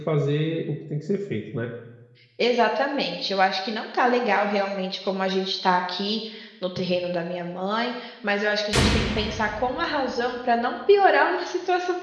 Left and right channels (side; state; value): both; identical; correlation 1.00